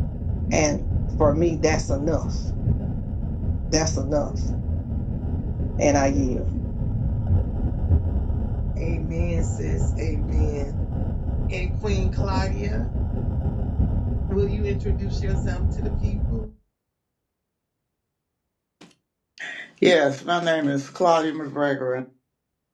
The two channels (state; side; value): identical; both; correlation 1.00